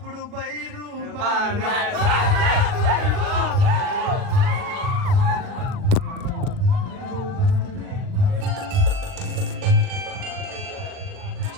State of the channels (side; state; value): left; late; 40 ms